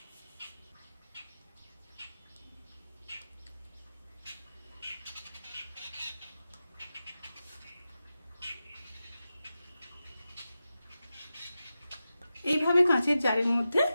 এইভাবে কাঁচের জারের মধ্যে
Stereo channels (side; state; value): both; inverted; correlation -0.92